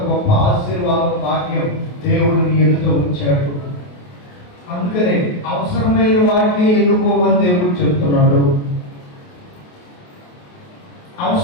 గొప్ప ఆశీర్వాదం భాగ్యం దేవుడు నీ ఎదుట ఉంచాడు. అందుకనే అవసరమైన వాటిని ఎన్నుకోమని దేవుడు చెప్తున్నాడు.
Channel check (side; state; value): right; late; 28 ms